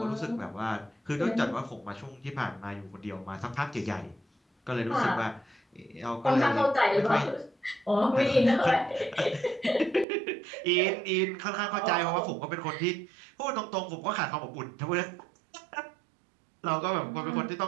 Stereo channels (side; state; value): left; drops out; at 10.1 s